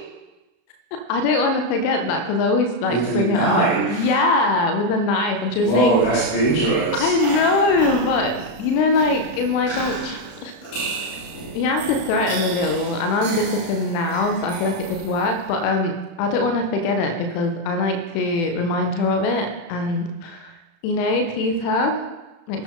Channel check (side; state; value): right; late; 34 ms